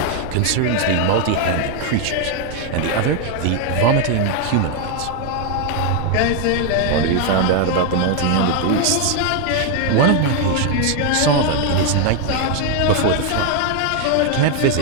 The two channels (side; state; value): both; different; correlation 0.01